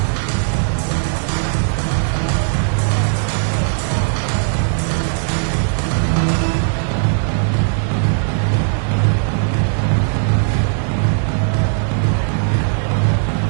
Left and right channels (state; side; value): silent; left; digital silence